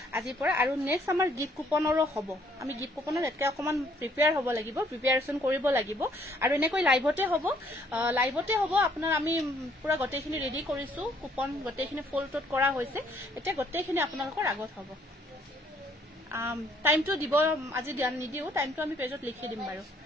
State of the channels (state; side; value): normal; both; correlation 0.65